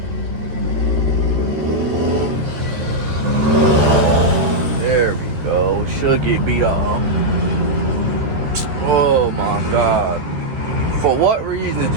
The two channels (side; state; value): left; late; 13 ms